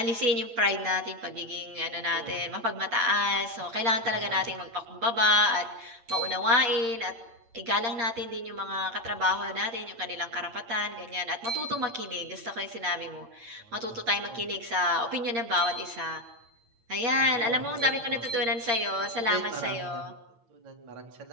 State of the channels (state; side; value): late; left; 8.7 ms